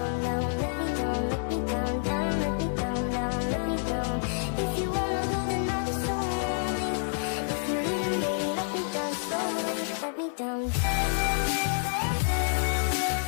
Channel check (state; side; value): silent; right; 59 dB below the other